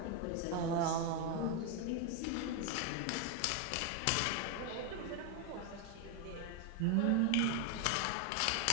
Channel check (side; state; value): both; different; correlation 0.01